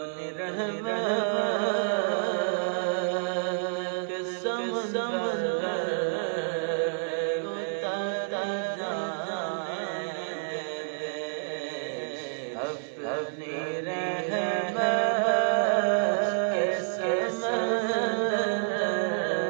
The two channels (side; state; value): left; silent; 59 dB below the other